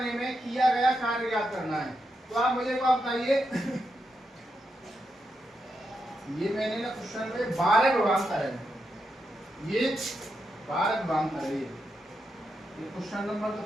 में किया गया कार्य ज्ञात करना है। तो आप मुझे को बताइए ये मैंने ना क्वेश्चन में 12 विभवांतर है, ये 12 विभवांतर है। ये क्वेश्चन नंबर तो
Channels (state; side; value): normal; both; correlation 0.85